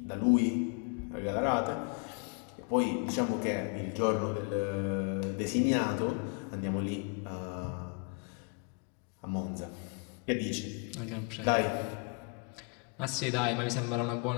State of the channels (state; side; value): quieter; right; 35.1 dB